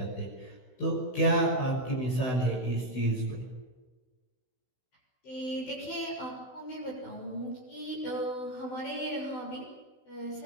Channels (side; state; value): right; late; 16 ms